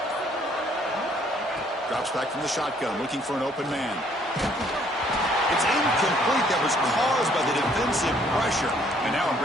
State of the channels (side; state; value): both; normal; correlation 0.64